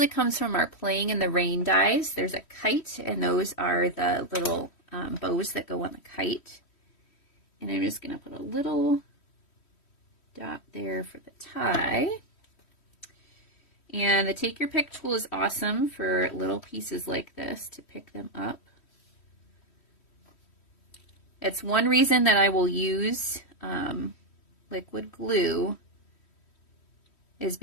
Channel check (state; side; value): late; right; 3.1 ms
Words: comes from our Playing in the Rain dies. There's a kite, and those are the little bows that go on the kite. And I'm just going to put a little dot there for the tie. And the Take Your Pick tool is awesome for little pieces like this to pick them up. It's one reason that I will use liquid glue, is